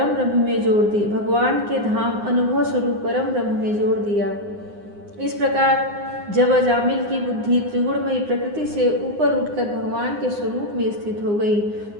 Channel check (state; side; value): late; left; 9.7 ms